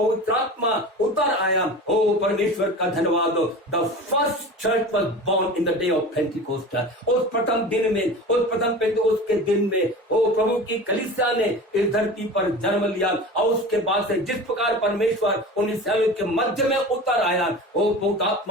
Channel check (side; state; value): both; normal; correlation 0.34